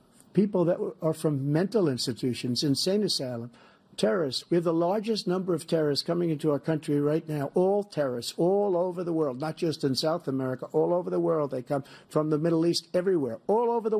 people that are from mental institutions, insane asylum, terrorists. We have the largest number of terrorists coming into our country right now, all terrorists, all over the world, not just in South America, all over the world. They come from the Middle East, everywhere. All over the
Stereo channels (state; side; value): identical; both; correlation 1.00